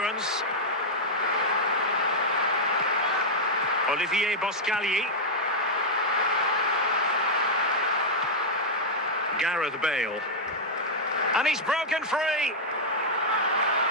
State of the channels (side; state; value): both; normal; correlation -0.04